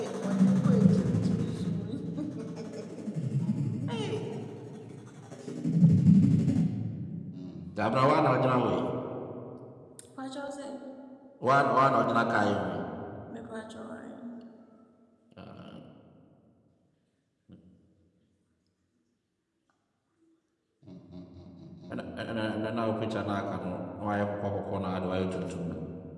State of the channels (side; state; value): both; identical; correlation 1.00